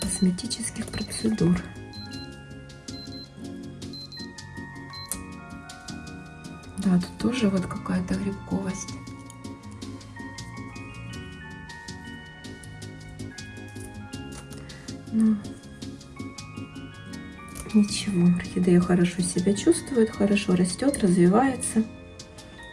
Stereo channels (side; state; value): both; identical; correlation 1.00